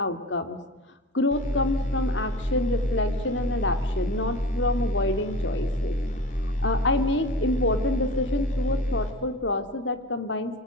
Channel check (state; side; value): normal; both; correlation 0.36